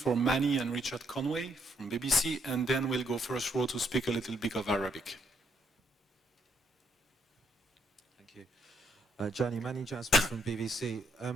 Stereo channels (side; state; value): both; normal; correlation 0.73